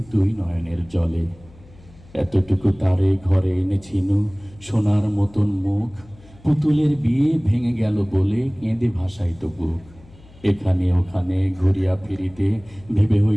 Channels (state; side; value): noise; left; hum, 24 dB below the sound